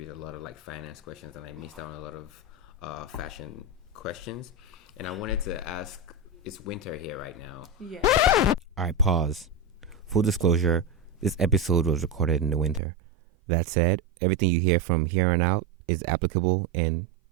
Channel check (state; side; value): drops out; left; at 12.8 s